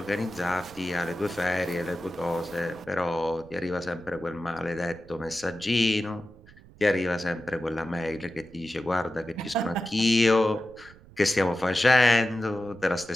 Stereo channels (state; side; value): noise; right; rumble, 23 dB below the sound